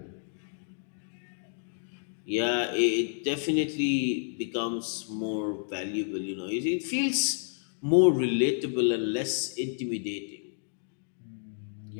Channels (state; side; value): silent; right; digital silence